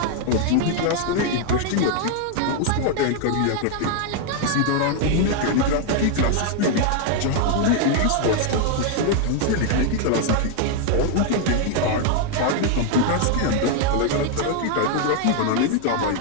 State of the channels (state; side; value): different; both; correlation 0.00